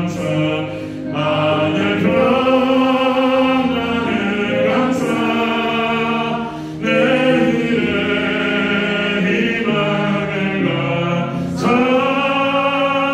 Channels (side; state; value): both; identical; correlation 1.00